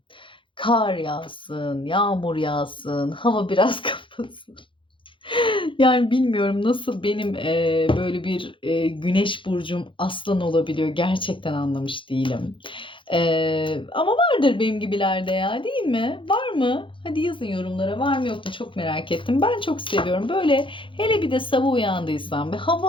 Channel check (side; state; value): right; late; 0.25 ms